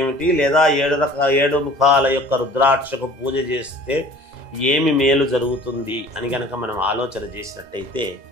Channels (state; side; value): late; left; 2.0 ms